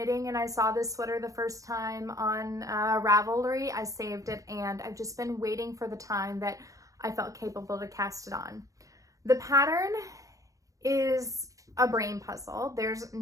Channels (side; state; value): left; late; 0.16 ms